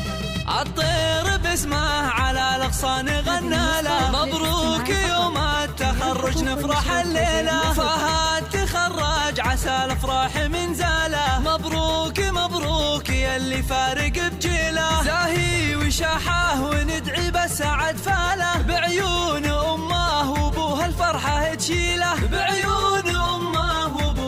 الطير باسمه على الاغصان غنى له، مبروك يوم التخرج نفرح الليله. فهد تخرج عسى الافراح من زاله، مبروك مبروك يلي فارق بجيله. زاهي وشاحه وندعي بالسعد فاله، بعيون امه وابوها الفرحه تشيله، بعيون امه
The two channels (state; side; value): identical; both; correlation 1.00